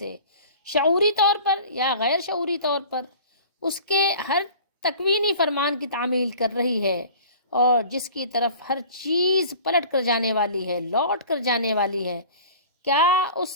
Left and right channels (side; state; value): both; inverted; correlation -0.44